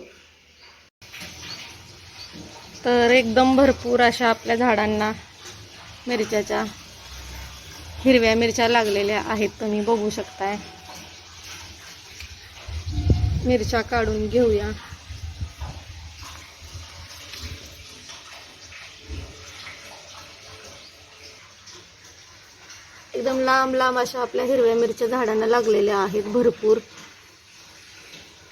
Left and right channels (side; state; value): both; identical; correlation 1.00